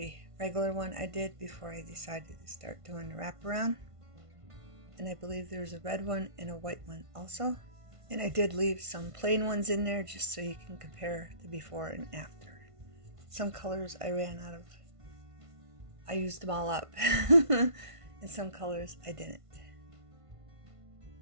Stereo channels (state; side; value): late; left; 1.5 ms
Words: regular one I did before I decided to start doing the wraparound, and I believe there's a red one and a white one also. And I did leave some plain ones in there just so you can compare the before and after. Some colors I ran out of. I used them all up. And some colors I didn't.